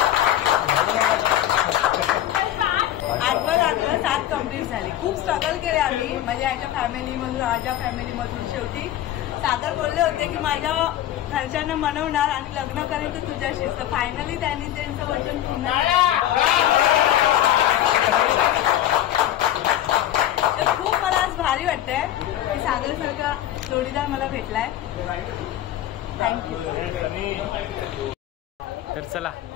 आठवं 7 कंप्लीट झाली. खूप स्ट्रगल केले आम्ही म्हणजे याच्या फॅमिलीमधून माझ्या फॅमिलीमधून. शेवटी सागर बोलले होते की माझ्या घरच्यांना मनवणार आणि लग्न करायचं तुझ्याशीच. तर फायनली त्यांनी त्यांचं वचन पूर्ण तर खूप मला आज भारी वाटतंय की सागरसारखा जोडीदार मला भेटलाय. थँक्यू. तर चला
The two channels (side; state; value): right; quieter; 12.6 dB